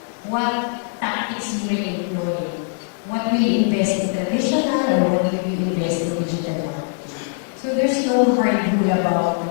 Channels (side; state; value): right; silent; 65 dB below the other